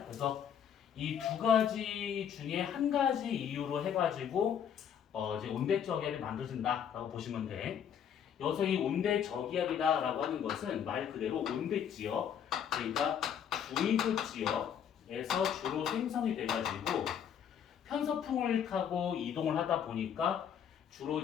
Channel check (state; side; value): quieter; right; 8.5 dB